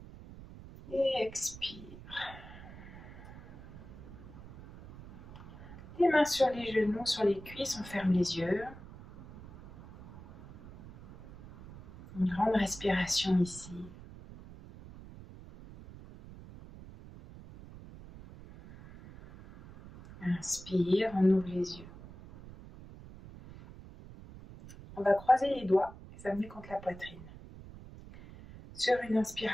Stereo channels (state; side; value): noise; right; rumble, 16 dB below the sound